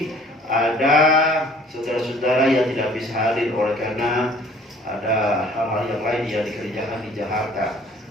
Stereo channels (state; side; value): normal; both; correlation 0.53